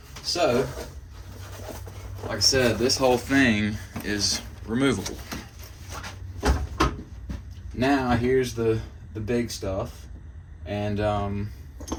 So, like I said, this whole thing is removable. Now here's the big stuff, and a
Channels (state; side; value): identical; both; correlation 1.00